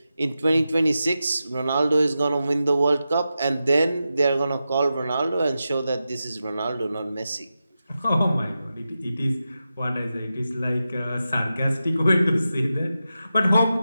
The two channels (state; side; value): inverted; both; correlation -0.91